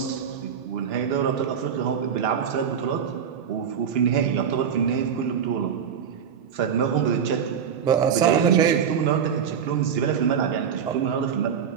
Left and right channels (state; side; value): quieter; left; 7.7 dB